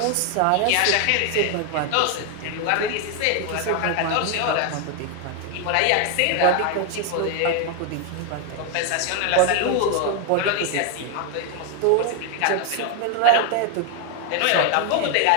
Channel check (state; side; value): different; both; correlation 0.01